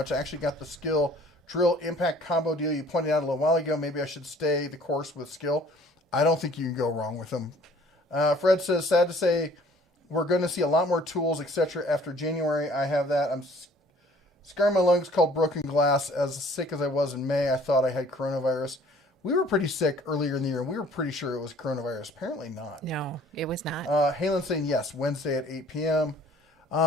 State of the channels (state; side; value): normal; both; correlation 0.54